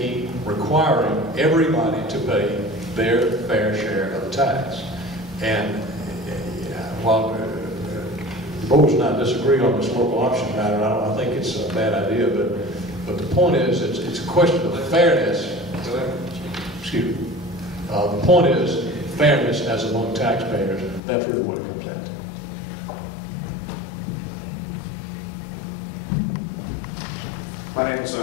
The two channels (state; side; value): drops out; right; at 21.0 s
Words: requiring everybody to pay their fair share of the tax. And while the board and I disagree on this local option matter, I think it's a bad idea, but the point is, it's a question of fairness. Excuse me. The point is fairness as among taxpayers. That's really what it comes down to. My name is